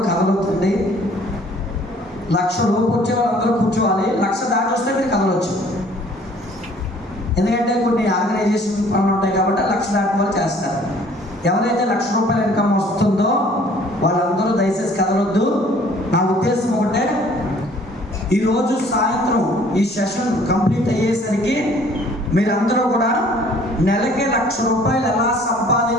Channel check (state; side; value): normal; both; correlation 0.56